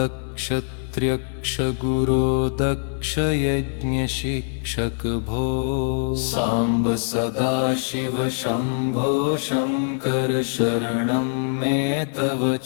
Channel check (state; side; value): silent; right; 61 dB below the other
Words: त्र्यक्ष गुरो दक्ष यज्ञ शिक्षक भो साम्ब सदाशिव शम्भो शङ्कर शरणं मे तव